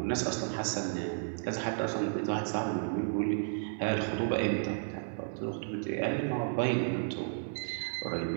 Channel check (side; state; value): left; silent; 56 dB below the other